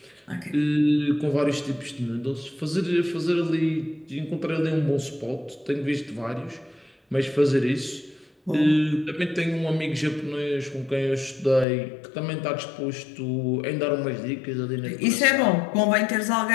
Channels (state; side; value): drops out; right; at 11.7 s